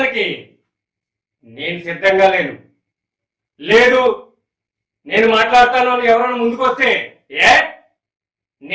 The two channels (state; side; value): identical; both; correlation 1.00